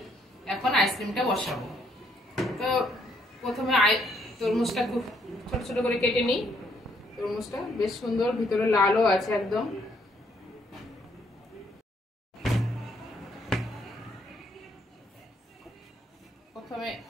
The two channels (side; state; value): both; normal; correlation 0.70